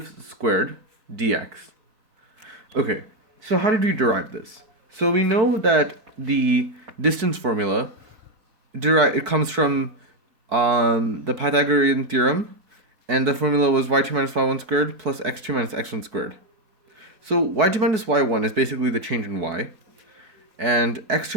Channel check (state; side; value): late; left; 4.6 ms